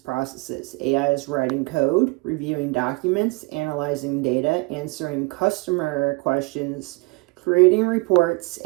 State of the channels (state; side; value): quieter; left; 27.5 dB